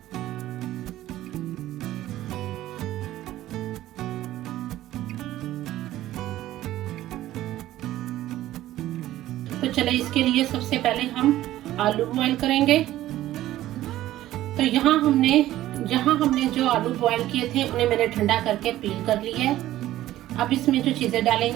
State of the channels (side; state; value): left; quieter; 14.4 dB